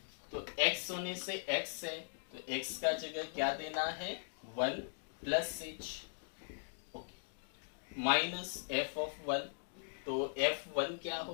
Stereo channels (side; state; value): right; silent; digital silence